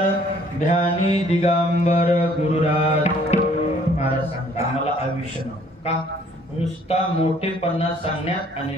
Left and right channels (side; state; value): both; normal; correlation 0.60